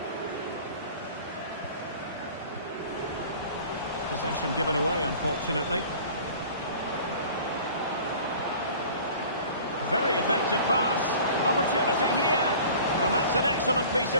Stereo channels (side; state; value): both; inverted; correlation -0.45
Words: Possession given away, unfortunately. Very effective pass. Opportunity here. And that's an excellent piece